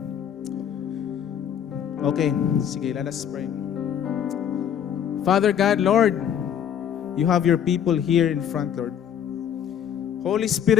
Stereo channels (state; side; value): quieter; right; 9.0 dB